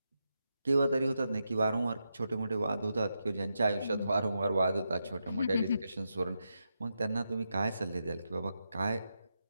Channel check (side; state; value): both; inverted; correlation -0.86